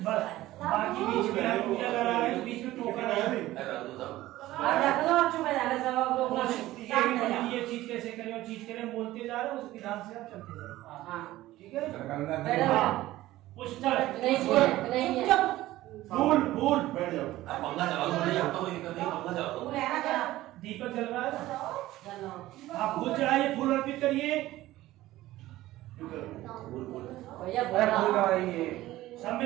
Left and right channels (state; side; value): quieter; left; 16.2 dB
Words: बस बाकी बीच में हम पूजा करा रहे हैं, बीच में टोकन है। रख दो सब। रख दो चुप है जाके सब लोग ये चीज कैसे करें और चीज करें बोलते जा रहे हैं, उस विधान से आप चलते जाओ। हाँ ठीक है। बैठो पुष्प नहीं फूल फूल बैठ जाओ। आप पंखा चलाओ तो नहीं आपको कोई दिक्कत नहीं पंखा चलाओ। तू रहना चला दीपक जल रहा है। चलो आप फूल चढ़ाइए, फूल अर्पित करिए। भैया अरे बोला फूल लगाइए सब